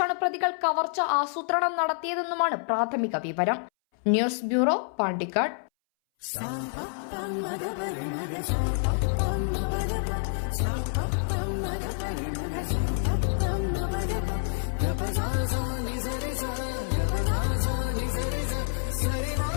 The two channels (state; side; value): silent; right; 60 dB below the other